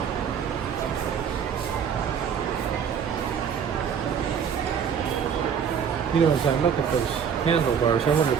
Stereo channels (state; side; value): quieter; left; 7.5 dB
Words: You know, as I look at those handlebars, I wonder